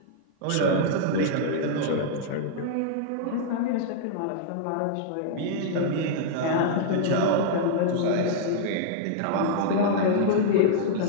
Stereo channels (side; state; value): both; different; correlation -0.01